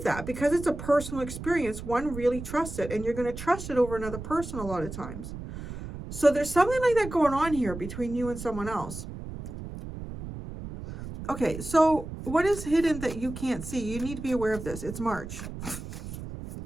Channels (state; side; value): noise; right; rumble, 10 dB below the sound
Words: that, because it's a personal experience, one really trusts it, and you're going to trust it over another person a lot of times. So there's something like that going on here between you and someone else. Okay, so what is hidden that you can't see? You need to be aware of this. It's March.